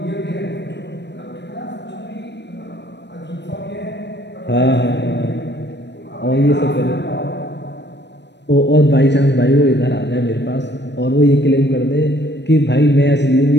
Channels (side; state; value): right; late; 0.50 ms